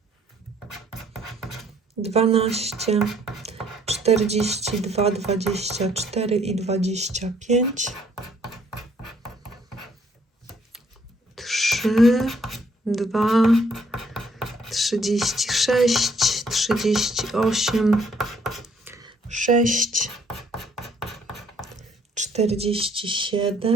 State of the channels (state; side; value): normal; both; correlation 0.65